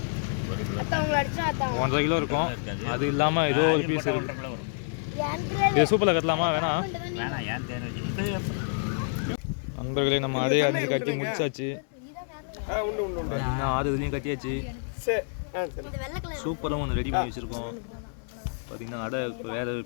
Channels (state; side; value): silent; right; digital silence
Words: 1.5 கிலோ இருக்கும். அது இல்லாமல் ஏதோ ஒரு பீஸ் இருக்குது. இது சூப்பரில் கட்டலாமா? வேணாம். நண்பர்களே நம்ம அடையை அரிஞ்சு கட்டி முடிச்சாச்சு. பார்த்தீங்கன்னா 6 இதுலேயும் கட்டியாச்சு. சூப்பராக ஒன்று ரெடி பண்ணி வச்சுருக்கோம். பார்த்தீங்கன்னா அடை வேறு